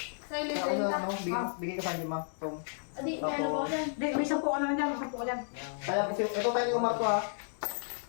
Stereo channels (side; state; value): right; silent; digital silence